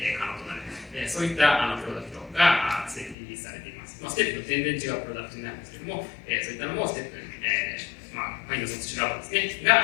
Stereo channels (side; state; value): right; drops out; at 3.2 s